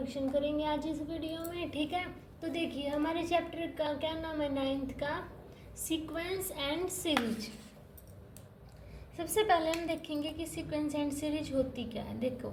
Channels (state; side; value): identical; both; correlation 1.00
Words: करेंगे आज इस वीडियो में, ठीक है। तो देखिए, हमारे चैप्टर का क्या नाम है 9th का, सीक्वेंस एंड सीरीज। सबसे पहले हम देखेंगे कि सीक्वेंस एंड सीरीज होती क्या है। देखो,